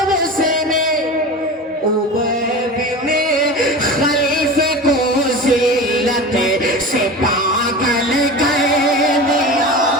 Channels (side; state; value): both; normal; correlation 0.30